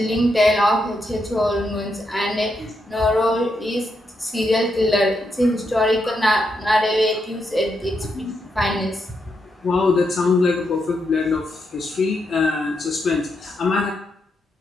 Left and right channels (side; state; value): both; normal; correlation 0.82